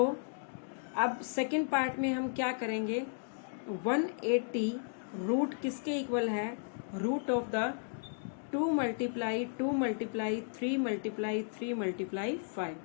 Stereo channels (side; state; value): right; silent; digital silence